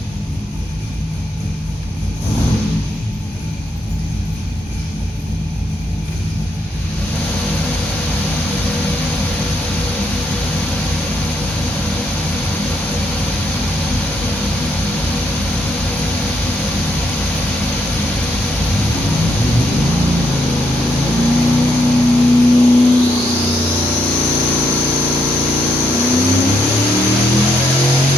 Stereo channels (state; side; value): normal; both; correlation 0.76